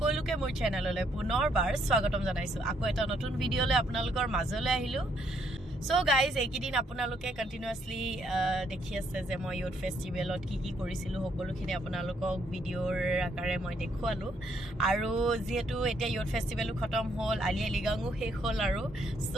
মোৰ চেনেললৈ পুনৰবাৰ স্বাগতম জনাইছো। আকৌ এটা নতুন ভিডিঅলৈ আপোনালোকৰ মাজলৈ আহিলো। So guys, এইকেইদিন আপোনালোকে কন্টিনিউয়াসলি দেখি আছে যে মই ইউথ ফেষ্টিভেলত কি কৰিছিলো সকলোখিনি আপোনালোকক ভিডিঅ'ৰ আকাৰে মই দেখুৱালো আৰু যেহেতু এতিয়া ইউথ ফেষ্টিভেলো খতম হ'ল আলি আলিগাংও শেষ হ'ল আৰু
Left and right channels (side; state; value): both; normal; correlation 0.72